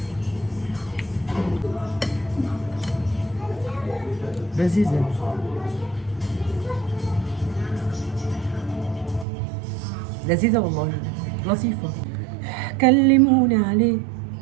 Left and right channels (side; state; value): left; drops out; at 9.2 s